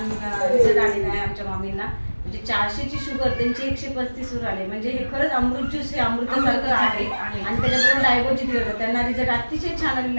रिझल्ट आलेला आहे आमच्या मामींना. म्हणजे 400ची शुगर त्यांची 135 वर आली. म्हणजे हे खरंच अमृत ज्यूस हे अमृतासारखं आहे. आणि त्याच्याबरोबर डायगोजी दिलं होतं. त्यांना रिझल्ट अतिशय छान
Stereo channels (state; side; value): inverted; both; correlation -1.00